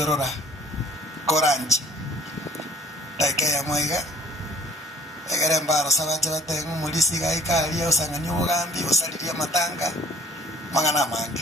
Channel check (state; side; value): normal; both; correlation 0.54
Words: Orora Koranji taike ya mwega egere mbaro sabaje batenga mulisi gaikari osanganya ubugambi osaliria matanga mangana